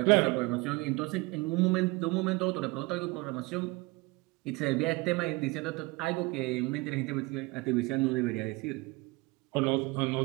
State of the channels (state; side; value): quieter; left; 24.2 dB